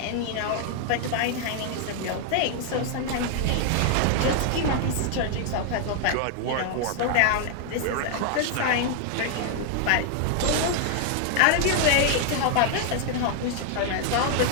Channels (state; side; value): different; both; correlation 0.00